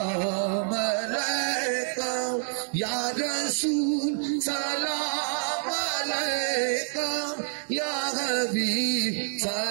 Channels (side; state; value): left; silent; digital silence